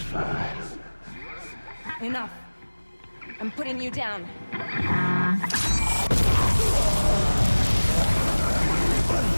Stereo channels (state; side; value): inverted; both; correlation -1.00